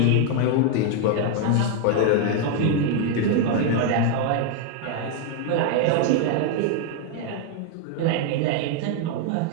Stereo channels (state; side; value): different; both; correlation 0.00